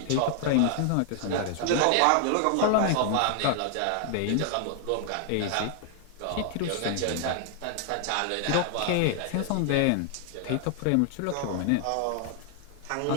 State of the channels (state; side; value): different; both; correlation 0.00